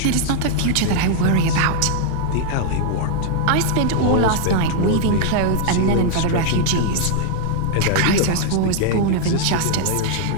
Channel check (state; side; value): different; both; correlation 0.00